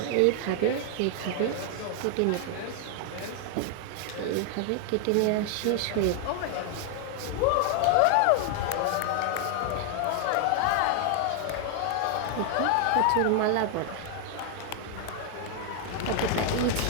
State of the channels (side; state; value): both; different; correlation 0.00